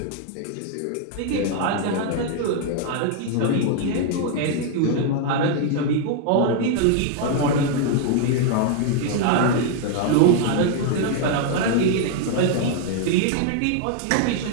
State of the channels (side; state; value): both; different; correlation 0.00